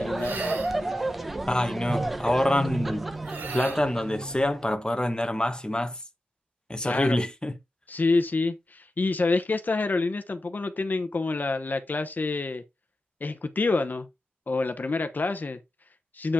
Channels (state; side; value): normal; both; correlation 0.91